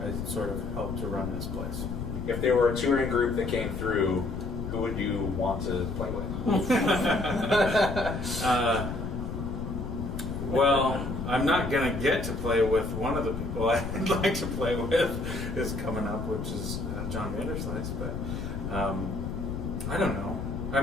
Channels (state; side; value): noise; left; rumble, 5 dB below the sound